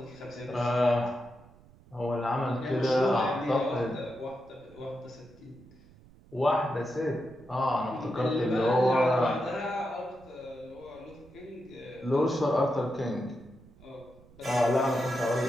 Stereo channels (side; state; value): right; noise; rumble, 25 dB below the sound